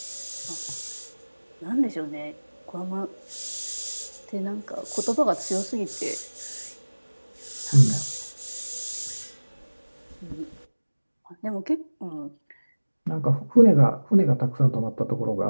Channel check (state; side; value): inverted; both; correlation -1.00